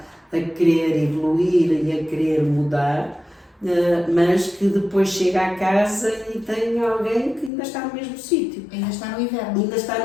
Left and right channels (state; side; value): drops out; right; at 7.5 s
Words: a querer evoluir e a querer mudar, mas que depois chega à casa e tem alguém que ainda está no mesmo sítio. Ainda está no inverno. Ainda